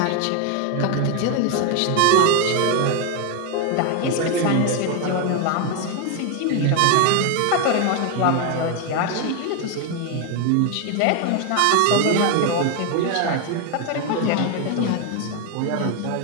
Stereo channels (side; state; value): both; different; correlation 0.01